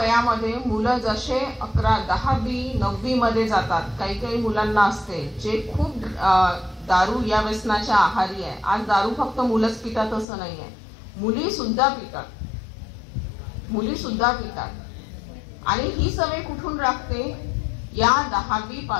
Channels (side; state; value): right; drops out; at 10.2 s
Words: मुलं जसे 11, 10वी, 9वी मध्ये जातात, काही काही मुलांना असते जे खूप दारू या व्यसनाच्या आहारी आहे. आज दारू फक्त मुलंच पितात असं नाही आहे, मुली सुद्धा पितात. आणि ही सवय कुठून लागते, या 10वी